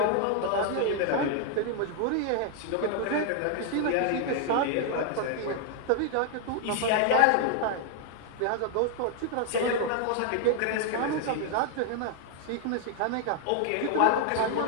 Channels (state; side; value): different; both; correlation 0.00